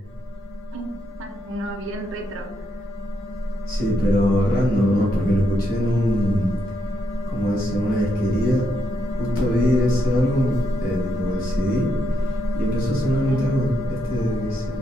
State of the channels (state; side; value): normal; both; correlation 0.79